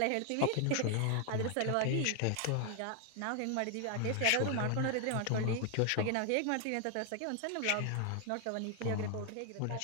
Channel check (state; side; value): different; both; correlation 0.00